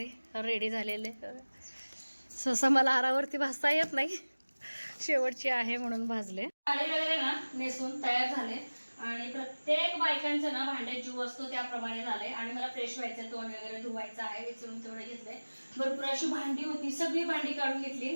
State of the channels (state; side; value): inverted; both; correlation -1.00